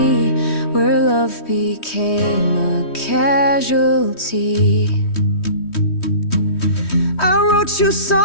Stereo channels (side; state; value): right; late; 3.1 ms